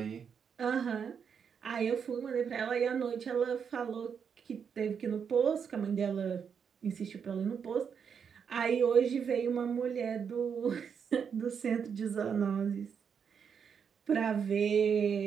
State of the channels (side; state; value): left; quieter; 7.0 dB